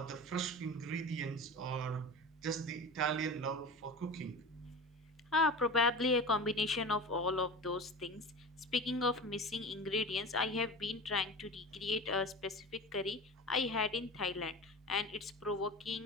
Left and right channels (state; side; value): normal; both; correlation 0.31